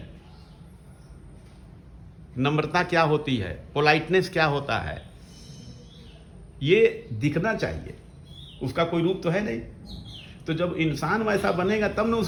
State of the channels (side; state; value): both; identical; correlation 1.00